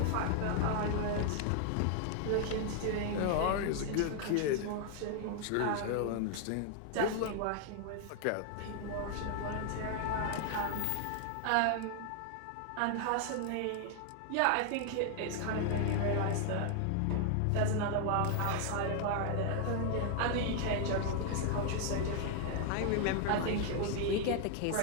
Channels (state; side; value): different; both; correlation 0.00